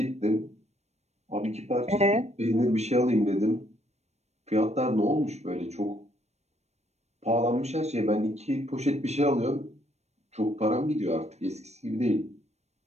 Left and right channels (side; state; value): left; late; 0.32 ms